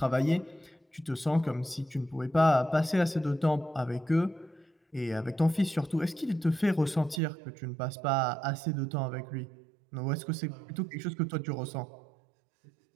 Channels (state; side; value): drops out; left; at 7.2 s